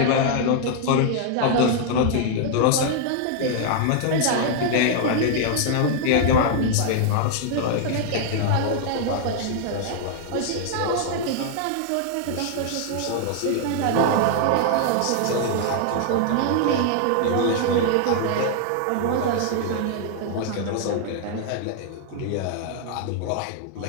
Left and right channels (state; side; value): different; both; correlation 0.00